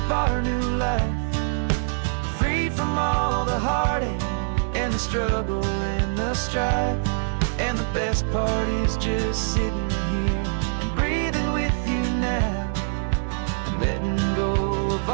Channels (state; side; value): silent; left; digital silence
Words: our new life, free from all the heartache and the struggle and the strife. And the best part is just sitting here and breathing with you now, and letting go of